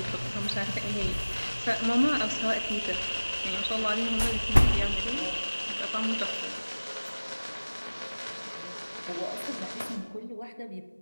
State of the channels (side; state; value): both; inverted; correlation -1.00